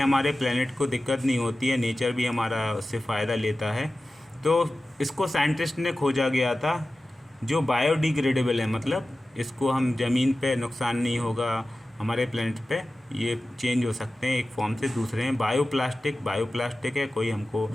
प्लेनेट को दिक्कत नहीं होती है, नेचर भी हमारा उससे फ़ायदा लेता है। तो इसको साइंटिस्ट ने खोजा गया था, जो बायोडिग्रेडेबल है, मतलब इसको हम ज़मीन पे नुकसान नहीं होगा, हमारे प्लेनेट पे ये चेंज हो सकते हैं एक फॉर्म से दूसरे में। बायोप्लास्टिक है, कोई हमको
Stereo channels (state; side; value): normal; both; correlation 0.95